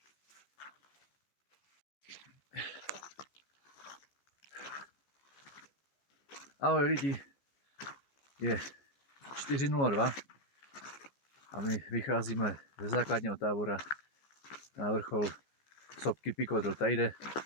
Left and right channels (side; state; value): right; late; 14 ms